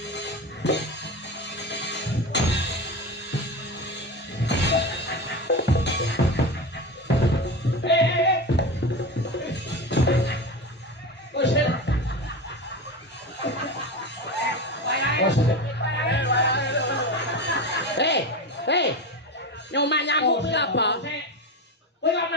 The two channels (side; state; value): both; normal; correlation 0.24